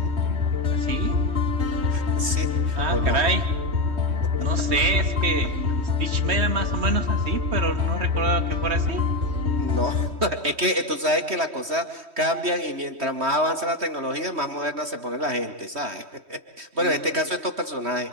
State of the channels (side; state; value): left; late; 3.1 ms